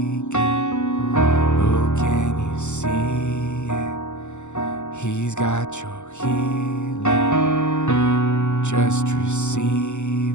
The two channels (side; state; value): right; late; 0.83 ms